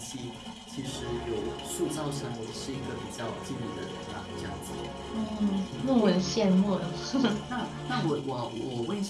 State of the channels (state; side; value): identical; both; correlation 1.00